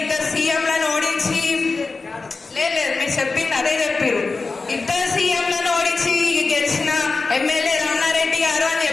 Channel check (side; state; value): right; quieter; 4.0 dB